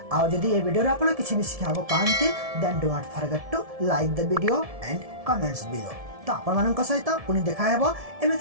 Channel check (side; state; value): left; late; 1.7 ms